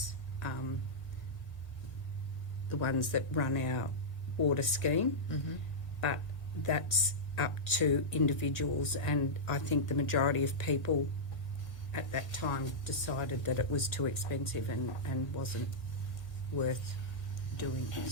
the ones that run our water scheme, but that's up to individuals, and I think the majority of people at that time decided that it was too expensive and wasn't worth doing.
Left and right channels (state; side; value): late; right; 1.6 ms